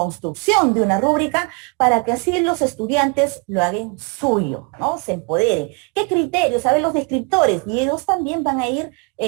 de una rúbrica para que así los estudiantes lo hagan suyo, ¿no? Se empoderen. ¿Qué criterios? A ver, los descriptores, y ellos también van a ir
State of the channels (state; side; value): quieter; left; 30.9 dB